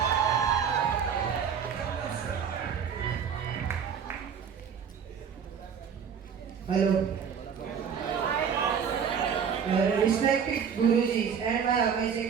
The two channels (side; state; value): left; quieter; 7.2 dB